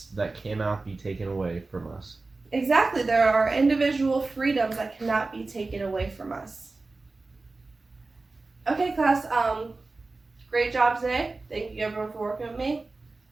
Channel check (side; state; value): left; quieter; 3.5 dB